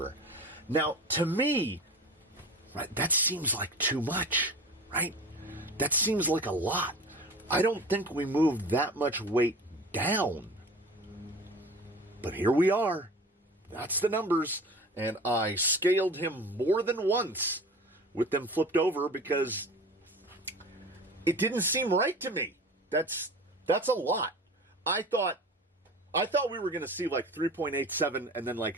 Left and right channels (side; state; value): both; normal; correlation 0.38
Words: Now, to me, right, that seems like too much, right? That seems like a lot. I don't think we moved that much weight down. But here we are. That's the numbers. And I scaled him more than once with them flipped over because it didn't seem right to me. That's a lot. I thought we were going to see like 3.87 and then